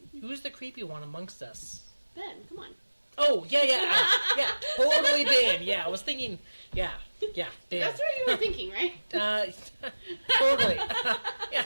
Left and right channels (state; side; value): inverted; both; correlation -1.00